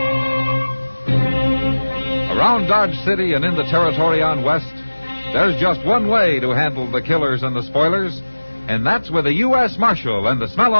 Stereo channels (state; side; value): inverted; both; correlation -1.00